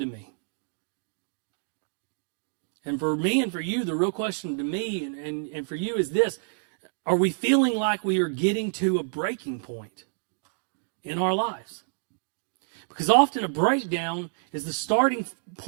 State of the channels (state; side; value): silent; left; digital silence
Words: me. And for me and for you, the real question to me and for you is this. Are we feeling like we are getting to a breaking point in our lives? Because often a breakdown is the starting